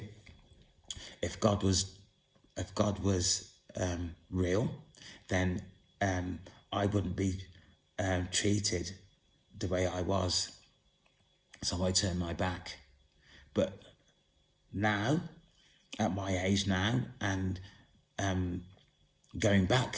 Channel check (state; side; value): identical; both; correlation 1.00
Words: if God was real, then I wouldn't be treated the way I was. So I turned my back. But now, at my age now, and going